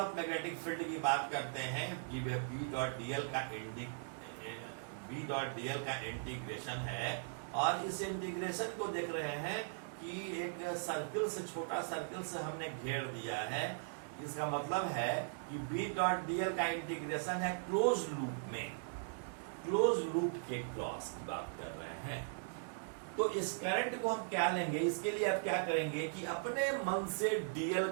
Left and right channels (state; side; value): silent; left; digital silence